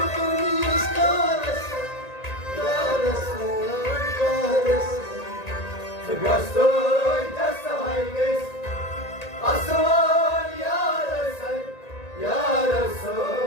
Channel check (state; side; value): late; right; 1.9 ms